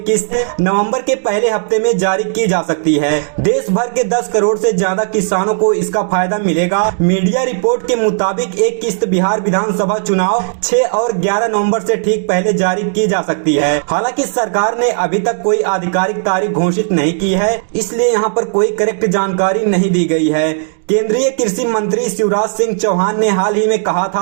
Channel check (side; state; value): left; silent; digital silence